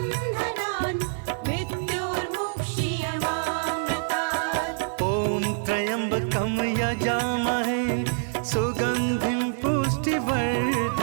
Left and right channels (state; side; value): silent; left; 61 dB below the other